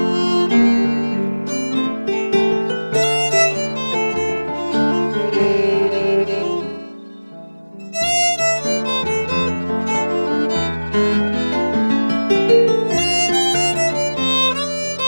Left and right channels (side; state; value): both; inverted; correlation -1.00